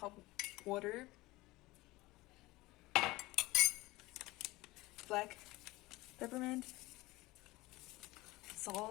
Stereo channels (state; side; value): quieter; right; 20.1 dB